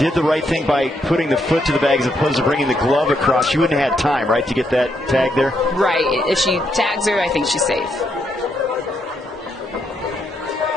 the right thing by putting the foot to the bag as opposed to bringing the glove across. She wouldn't have had time, right, to get that tag there? Right. If she tags her, I think she's safe.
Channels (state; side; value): normal; both; correlation 0.77